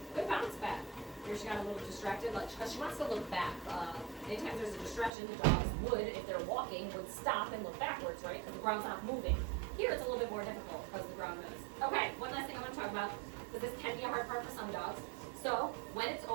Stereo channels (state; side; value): drops out; left; at 5.1 s